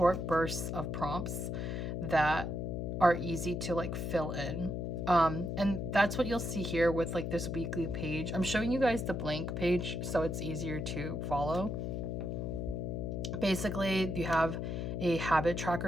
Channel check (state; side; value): noise; left; hum, 2 dB below the sound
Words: bursts of prompts that are easy to like fill in. And that's what you'll see here with like this weekly page. I'm showing you guys the blank page so it's easier to follow. Basically, you have a habit